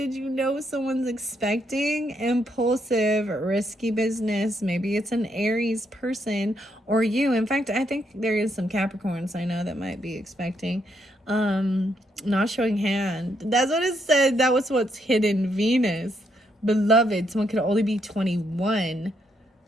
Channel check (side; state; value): both; normal; correlation 0.76